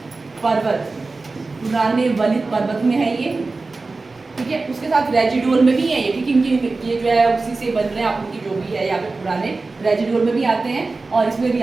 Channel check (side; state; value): left; quieter; 3.7 dB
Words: पर्वत, पुराने वलित पर्वत में है ये, ठीक है। उसके साथ रेजिडुअल में भी है ये, ठीक है, इनकी ये जो है उसी से बन रहे हैं आप उनकी जो भी है यहाँ पे, पुराने रेजिडुअल में भी आते हैं और इसमें भी